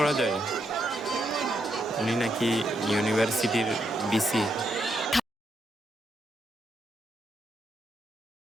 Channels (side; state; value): both; normal; correlation 0.80